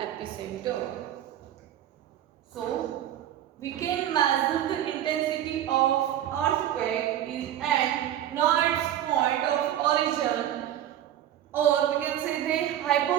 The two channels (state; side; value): quieter; left; 11.6 dB